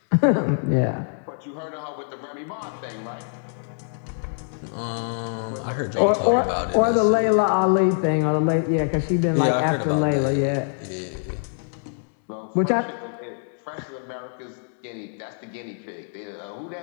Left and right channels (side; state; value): right; silent; digital silence